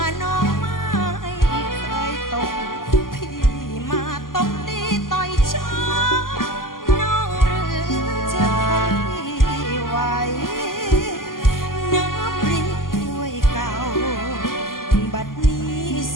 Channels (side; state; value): right; late; 0.91 ms